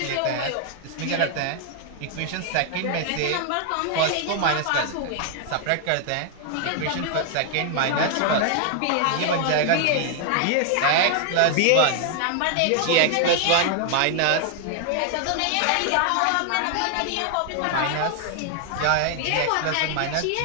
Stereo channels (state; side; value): different; both; correlation 0.00